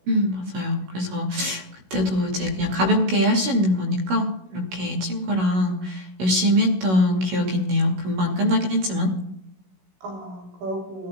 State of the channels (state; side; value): late; left; 16 ms